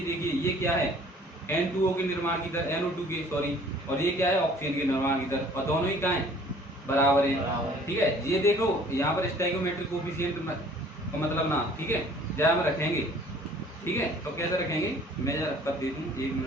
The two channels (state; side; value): normal; both; correlation 0.53